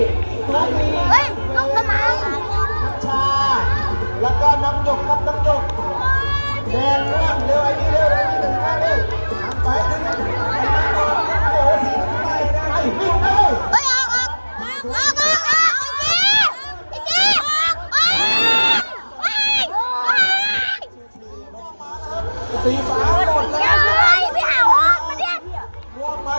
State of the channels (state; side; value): inverted; both; correlation -1.00